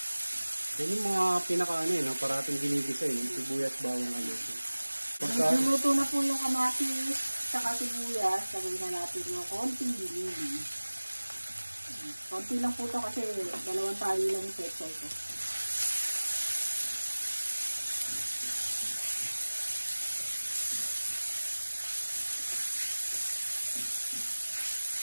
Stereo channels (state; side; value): inverted; both; correlation -1.00